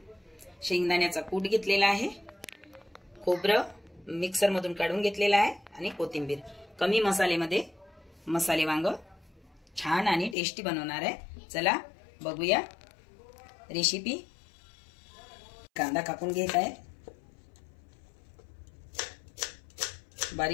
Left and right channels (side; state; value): right; drops out; at 10.4 s